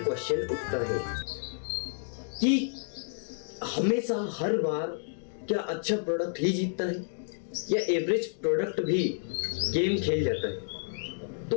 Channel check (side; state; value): right; silent; digital silence